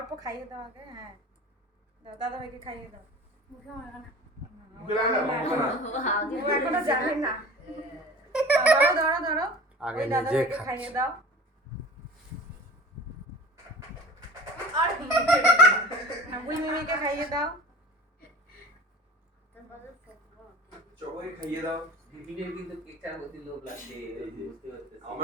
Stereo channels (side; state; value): both; normal; correlation 0.40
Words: খাইয়ে দাও আগে। হ্যাঁ দাও, দাদা ভাইকে খাইয়ে দাও। মুখে মারো না। ও এখনো জানে না। ধরো ধরো ধরো। আগে ওই দাদা নিজে ভাইকে খাচ্ছে। খাইয়ে দাও। আর বুই মিমিকে খাইয়ে দাও। সবাই খাইয়ে দাও। দিদির কিন্তু কেকটার প্রতি লোভ লাগছে, বুঝতে পারছিস?